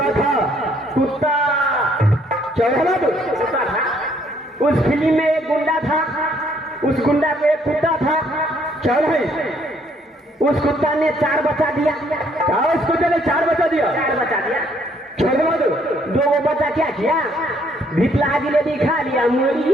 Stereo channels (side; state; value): both; normal; correlation 0.66